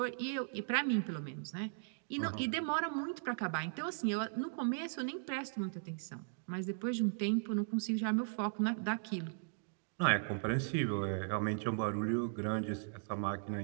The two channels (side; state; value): left; silent; digital silence